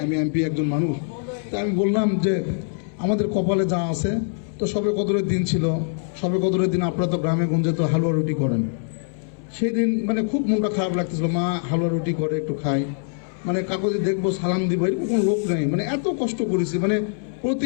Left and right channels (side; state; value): right; silent; 63 dB below the other